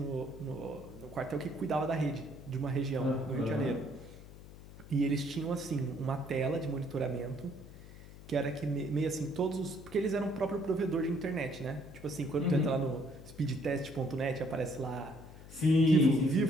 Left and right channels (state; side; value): noise; left; hum, 17 dB below the sound